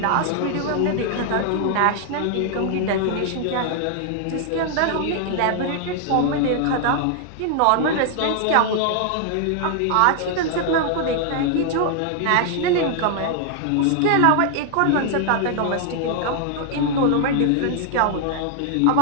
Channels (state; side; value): different; both; correlation 0.00